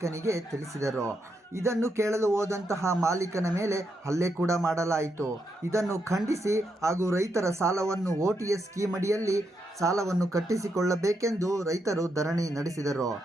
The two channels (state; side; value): normal; both; correlation 0.81